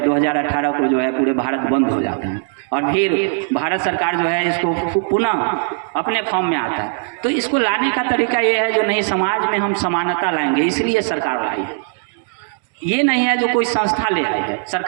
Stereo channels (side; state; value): left; silent; digital silence